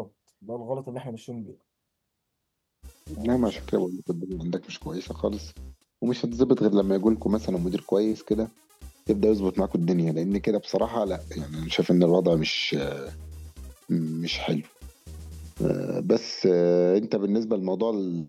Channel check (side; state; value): both; identical; correlation 1.00